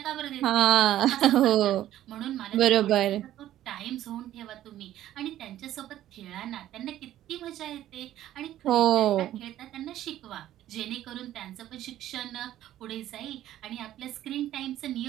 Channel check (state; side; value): quieter; left; 13.0 dB